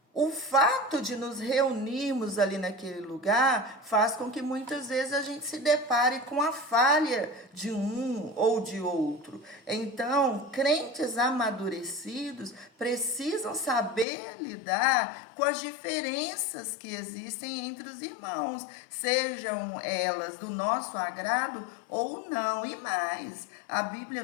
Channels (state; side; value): drops out; right; at 14.1 s